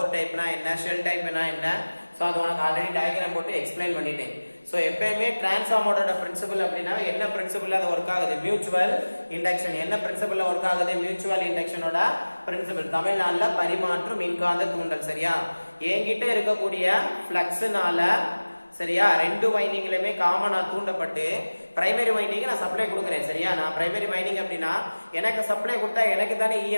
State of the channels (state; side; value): inverted; both; correlation -1.00